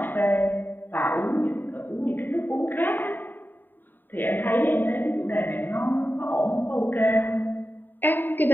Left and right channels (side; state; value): right; late; 0.092 ms